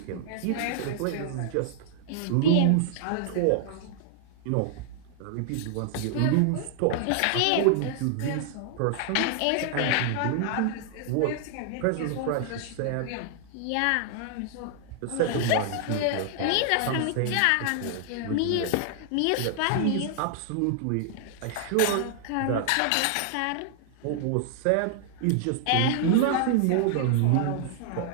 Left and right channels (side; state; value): both; different; correlation -0.01